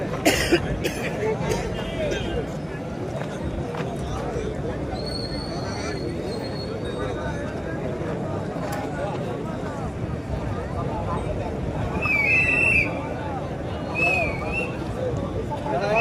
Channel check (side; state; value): both; identical; correlation 1.00